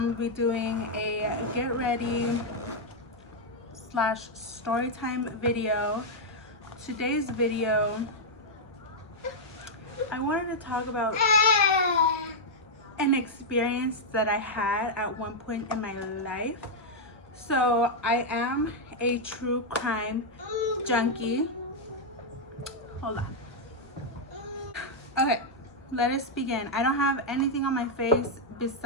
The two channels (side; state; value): both; normal; correlation -0.03